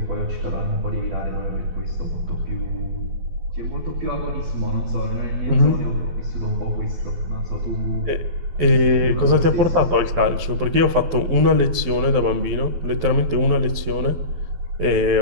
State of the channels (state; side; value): late; left; 12 ms